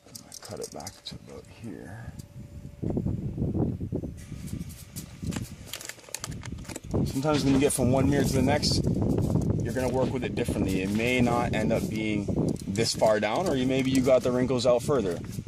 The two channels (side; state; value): both; identical; correlation 1.00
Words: I'm gonna cut it back to about here. Sometimes when you get from one mirror to the next, you're going to work with it differently. It may not end up being this far down, or maybe you got the wrinkles out further.